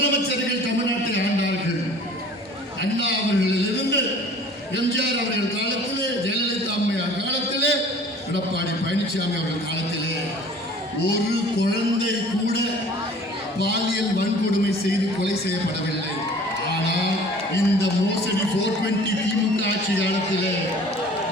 தமிழ்நாட்டை ஆண்டார்கள். அண்ணா அவர்களிலிருந்து எம்ஜிஆர் அவர்கள் காலத்திலே, ஜெயலலிதா அம்மையார் காலத்திலே, எடப்பாடி பழனிசாமி அவர்கள் காலத்திலே ஒரு குழந்தை கூட பாலியல் வன்கொடுமை செய்து கொலை செய்யப்படவில்லை. ஆனால் இந்த மோசடி 420 திமுக ஆட்சி காலத்திலே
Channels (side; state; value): both; normal; correlation 0.47